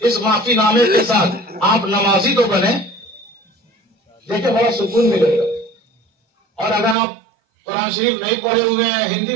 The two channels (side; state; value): left; drops out; at 7.0 s